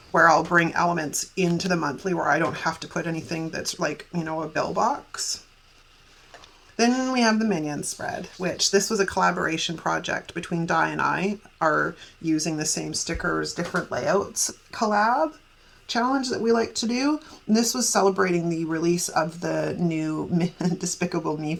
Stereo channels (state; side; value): identical; both; correlation 1.00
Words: where I'll bring elements into the monthly where I don't have to put anything that's like, you know, a bill box. Then we have the Minion spread, which this was a collaboration project between Di and I, are using the same stickers, different layouts collab challenge that we like to do. And this was celebrating the release of the new Despicable Me